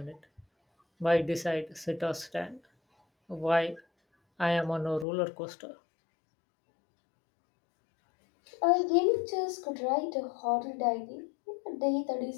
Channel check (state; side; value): drops out; right; at 5.1 s